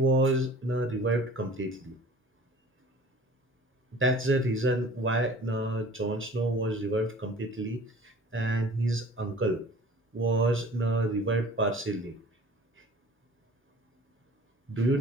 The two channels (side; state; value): both; normal; correlation 0.45